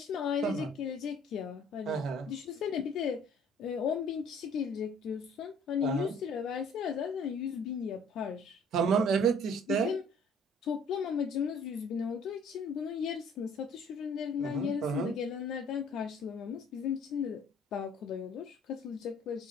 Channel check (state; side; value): normal; both; correlation 0.55